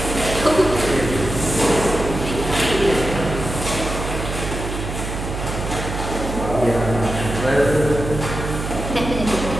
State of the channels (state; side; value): noise; right; hum, 5 dB below the sound